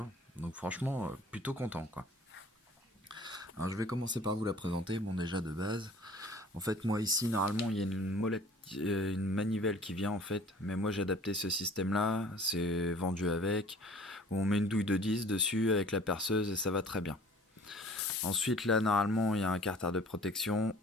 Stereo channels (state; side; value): normal; both; correlation 0.49